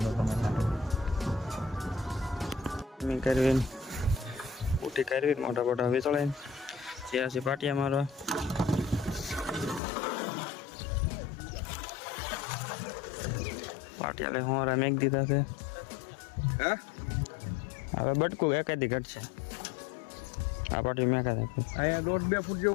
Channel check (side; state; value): right; drops out; at 9.8 s